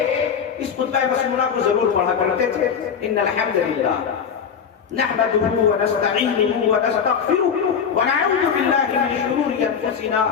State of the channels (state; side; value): quieter; right; 7.1 dB